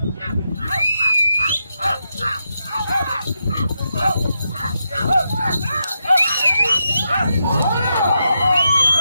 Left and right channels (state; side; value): inverted; both; correlation -0.85